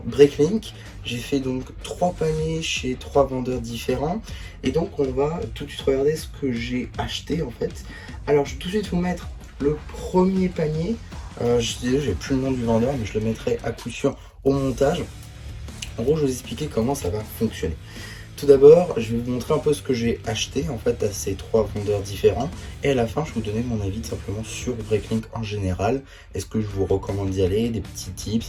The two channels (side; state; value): both; identical; correlation 1.00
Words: Breaklink. J'ai fait donc 3 paniers chez 3 vendeurs différents. Et donc on va tout de suite regarder ce que j'ai acheté en fait. Alors je vais tout de suite vous mettre le premier panier. J'ai plus le nom du vendeur, mais je le mettrai à coup sûr au montage. En gros, je vais vous expliquer comment ça va fonctionner. Tout d'abord, je vais vous montrer un peu ce que j'ai acheté en fait à ces 3 vendeurs différents. Et à la fin, je vais vous donner mon avis simplement sur Breaklink en général. Est-ce que je vous recommande d'y aller, des petits tips,